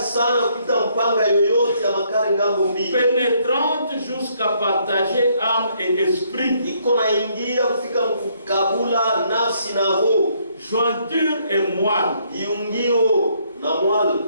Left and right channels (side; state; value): both; inverted; correlation -0.70